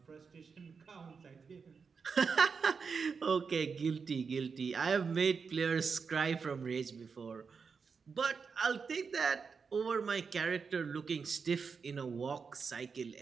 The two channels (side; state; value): left; quieter; 5.5 dB